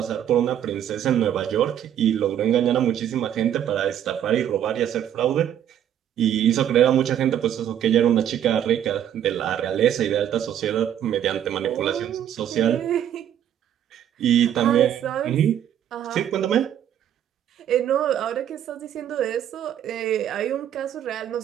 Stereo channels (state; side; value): quieter; left; 10.3 dB